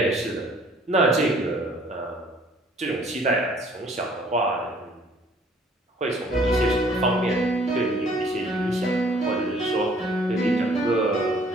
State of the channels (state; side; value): normal; both; correlation 0.58